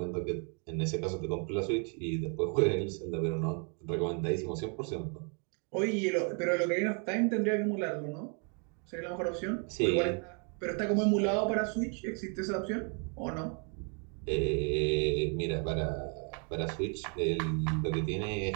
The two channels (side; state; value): left; quieter; 38.9 dB